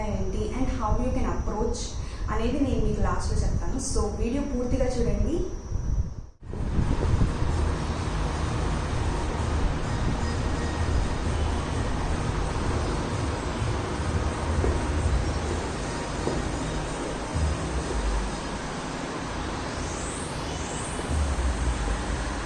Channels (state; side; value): identical; both; correlation 1.00